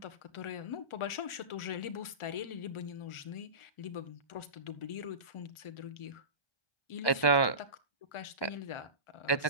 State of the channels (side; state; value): right; late; 1.4 ms